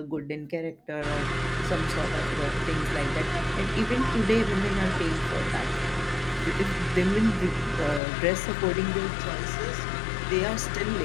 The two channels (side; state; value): right; drops out; at 8.0 s